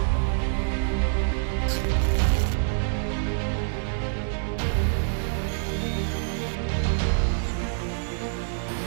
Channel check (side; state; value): left; silent; digital silence